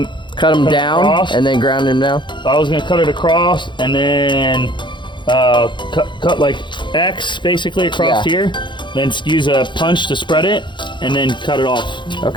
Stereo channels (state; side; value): late; right; 0.23 ms